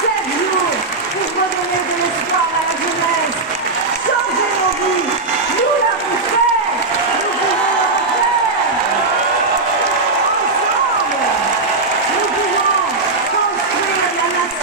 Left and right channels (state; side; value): quieter; left; 3.5 dB